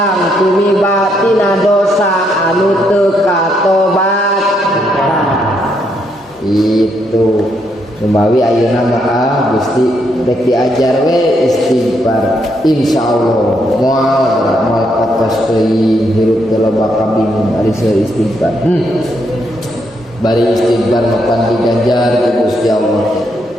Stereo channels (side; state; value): both; normal; correlation 0.76